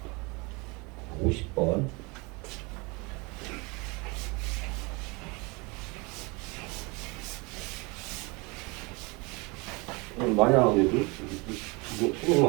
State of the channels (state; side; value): quieter; left; 27.5 dB